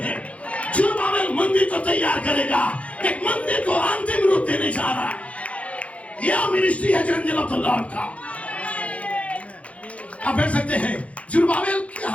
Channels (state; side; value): late; right; 0.064 ms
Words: है। जुरुब्बाबेल मंदिर को तैयार करेगा, एक मंदिर को अंतिम रूप देने जा रहा है। यह मिनिस्ट्री है एंजल ऑफ द लॉर्ड का। आप कह सकते हैं जुरुब्बाबेल के